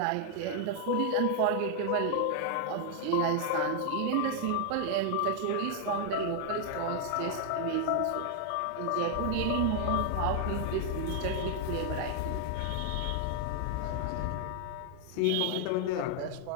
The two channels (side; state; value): both; different; correlation 0.00